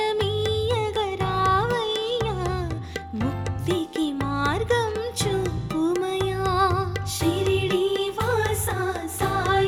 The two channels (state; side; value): identical; both; correlation 1.00